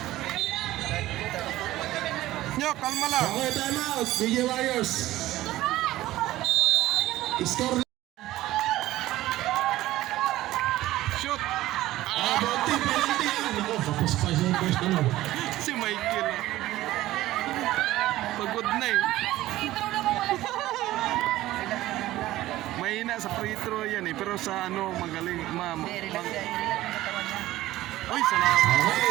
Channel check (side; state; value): left; quieter; 15.9 dB